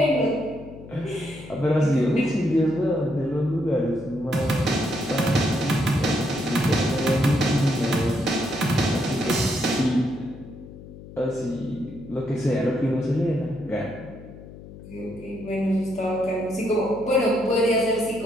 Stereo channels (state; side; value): noise; left; hum, 16 dB below the sound